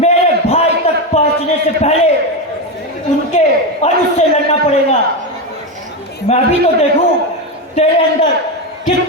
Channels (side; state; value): both; normal; correlation 0.12